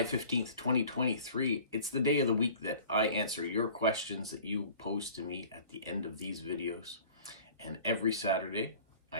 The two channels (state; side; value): inverted; both; correlation -0.46